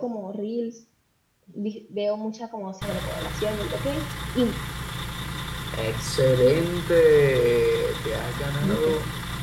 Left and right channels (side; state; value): both; identical; correlation 1.00